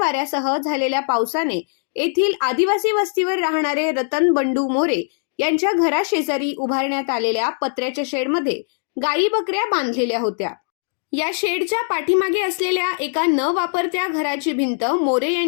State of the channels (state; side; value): silent; right; digital silence